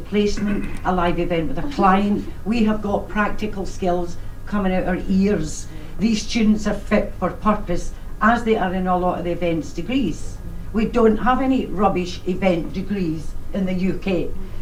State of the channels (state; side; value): identical; both; correlation 1.00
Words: placement, a live event with a client. We have got practical skills coming out our ears. These students are fit for purpose, as they are in a lot of the events degrees. We don't have any rubbish event degrees in the UK,